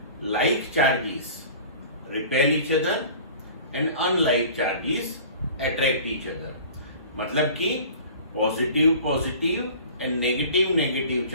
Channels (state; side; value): inverted; both; correlation -0.43